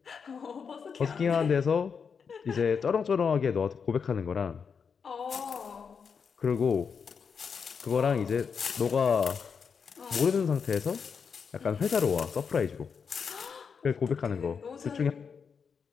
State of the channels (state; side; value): quieter; right; 6.2 dB